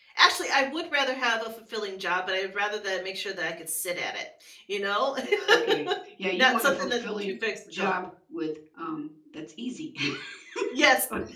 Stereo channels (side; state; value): both; identical; correlation 1.00